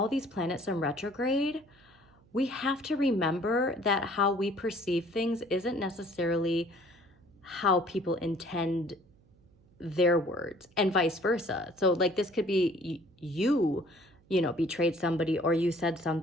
these planets in retrograde, we have to remember that how we perceive things isn't necessarily how people intend their words, and vice versa. So this could be you betrayed somebody, or you said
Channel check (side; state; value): right; noise; hum, 30 dB below the sound